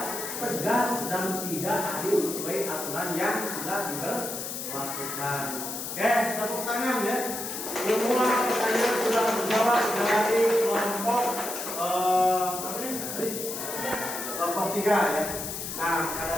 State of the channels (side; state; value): left; noise; hiss, 6 dB below the sound